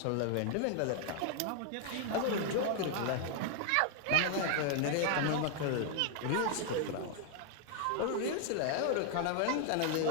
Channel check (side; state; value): both; different; correlation 0.00